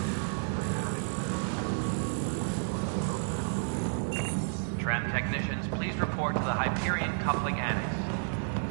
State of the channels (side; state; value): left; silent; digital silence